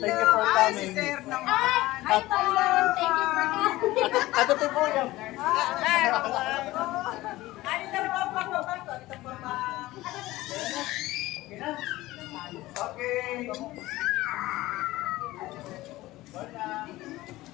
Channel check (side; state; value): right; quieter; 17.8 dB